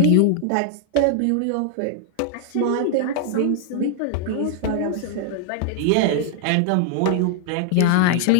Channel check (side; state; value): both; different; correlation 0.00